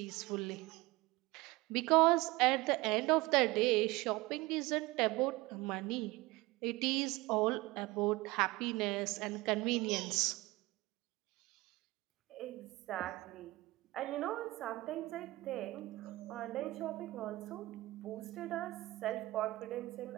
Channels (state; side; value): quieter; left; 20.6 dB